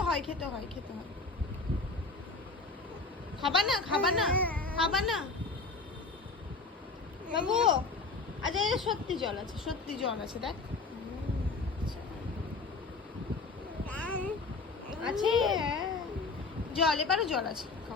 হয় খেতে হয় খেতে হয়। খাবা না খাবা না খাবা না বাবু? আচ্ছা এটা সত্যি জল আছে, সত্যি জল আছে, দেখ আছে জল, এবারও জল আছে,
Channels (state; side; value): quieter; right; 3.9 dB